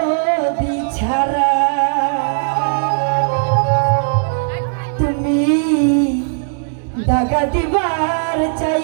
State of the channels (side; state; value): left; silent; digital silence